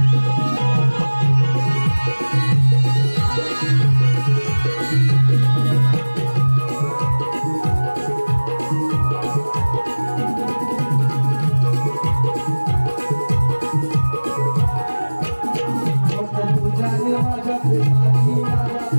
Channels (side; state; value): both; inverted; correlation -1.00